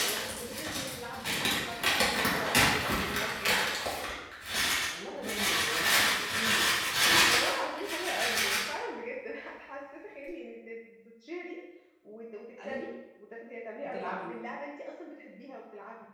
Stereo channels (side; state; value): both; identical; correlation 1.00